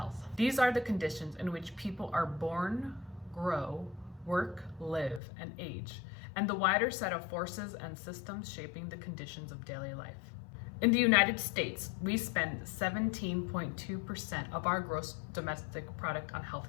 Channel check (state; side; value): drops out; right; at 5.2 s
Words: These are the conditions in which people are born, grow, work, live, and age, and the wider set of forces and systems shaping the conditions of daily life. In the United States, we spend 17.2% of our gross domestic product on